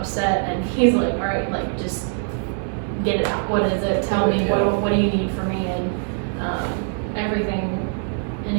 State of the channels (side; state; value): left; silent; 64 dB below the other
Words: and he's like, all right, like, just get it out. What is it? Tell me, what do you need from me? And everything